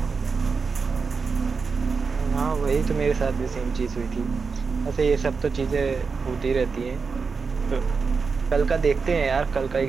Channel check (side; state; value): left; quieter; 5.0 dB